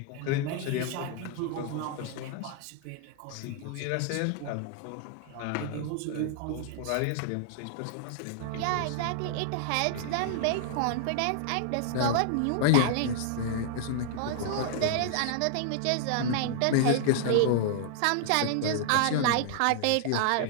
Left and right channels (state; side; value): different; both; correlation -0.01